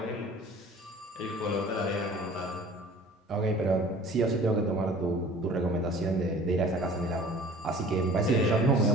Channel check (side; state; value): both; normal; correlation 0.46